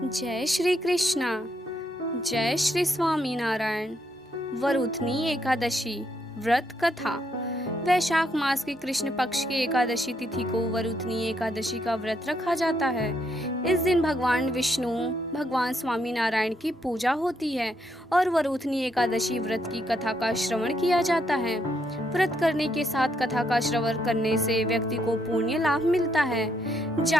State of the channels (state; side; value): normal; both; correlation 0.76